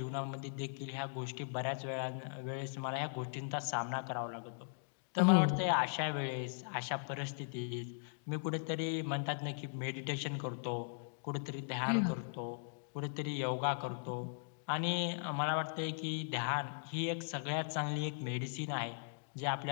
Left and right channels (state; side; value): silent; right; digital silence